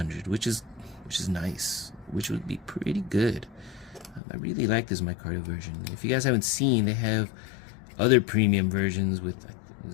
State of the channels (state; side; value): drops out; right; at 4.2 s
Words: which is nice, which would be pretty good. I really like this micarta version. If you guys haven't seen, they have other premium versions with,